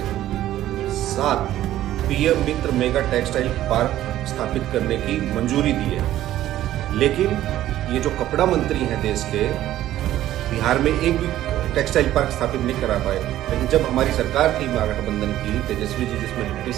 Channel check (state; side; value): quieter; left; 13.4 dB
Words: 7 पीएम मित्र मेगा टेक्सटाइल पार्क स्थापित करने की मंजूरी दी है, लेकिन ये जो कपड़ा मंत्री हैं देश के, बिहार में एक भी टेक्सटाइल पार्क स्थापित नहीं करा पाए। लेकिन जब हमारी सरकार थी महागठबंधन की, तेजस्वी जी जिसमें डिप्टी